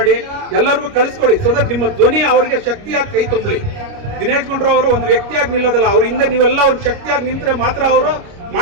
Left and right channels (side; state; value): left; late; 29 ms